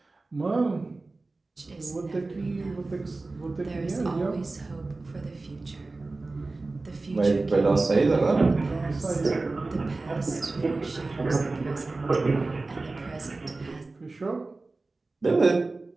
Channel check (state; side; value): quieter; left; 3.4 dB